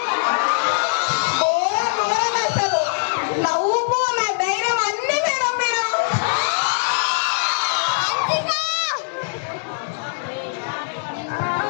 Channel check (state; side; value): silent; right; digital silence